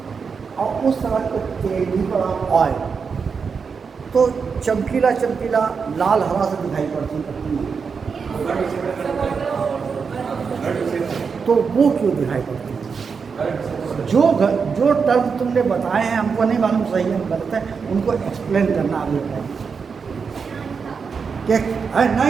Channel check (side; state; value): left; quieter; 5.7 dB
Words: और उस तरह के तेल भी पड़ा ऑयल, तो चमकीला लाल हरा से दिखाई पड़ती है, तो वो क्यों दिखाई पड़ती है? जो टर्म तुमने बताए हैं हमको नहीं मालूम सही है गलत है, उनको एक्सप्लेन करना आगे है कि